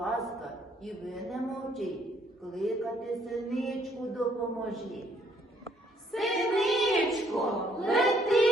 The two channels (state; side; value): normal; both; correlation 0.67